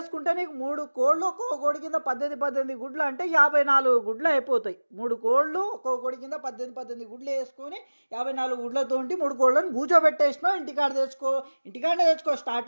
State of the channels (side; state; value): both; inverted; correlation -1.00